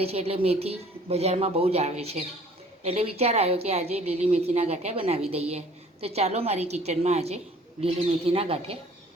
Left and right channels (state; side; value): normal; both; correlation 0.53